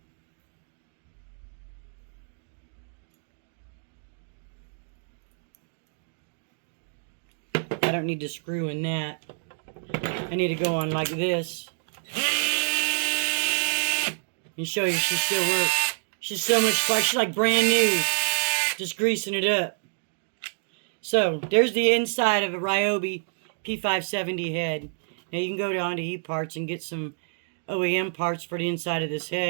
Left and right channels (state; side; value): silent; left; digital silence